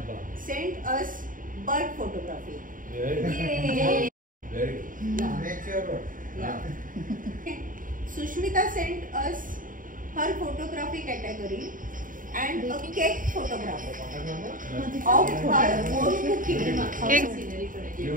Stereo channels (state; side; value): late; left; 0.39 ms